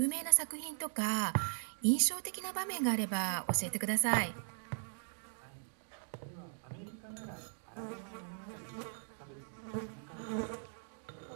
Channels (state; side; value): silent; left; digital silence